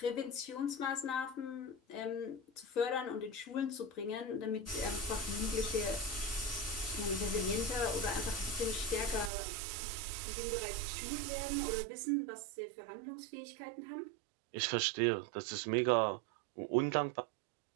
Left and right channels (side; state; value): left; drops out; at 9.3 s